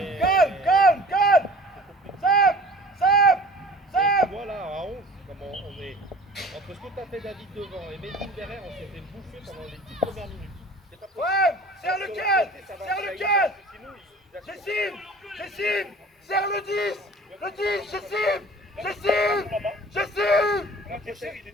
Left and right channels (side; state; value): both; normal; correlation 0.44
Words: Sam. Voilà, à 11, comment on est. Entre ce que t'as fait David devant et Medine derrière, on s'est fait bouffer pendant les 10 premières minutes. C'est pas possible. Ouais, serre le 15. Ça va, Serre le ça 15. ira, sinon, il a- J'estime. Serre le 10. Le 10, j'estime. Mon adversaire, il est